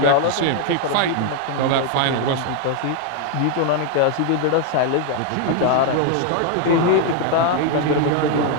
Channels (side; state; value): both; different; correlation 0.00